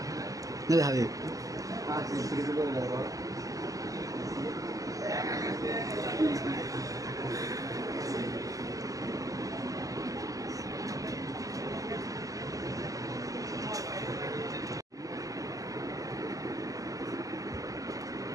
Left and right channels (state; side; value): late; left; 0.17 ms